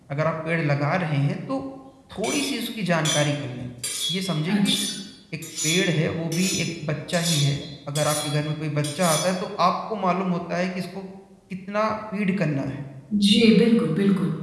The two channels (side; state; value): both; identical; correlation 1.00